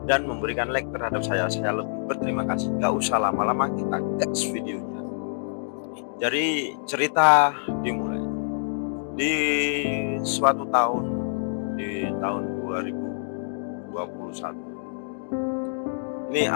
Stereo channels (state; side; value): silent; right; digital silence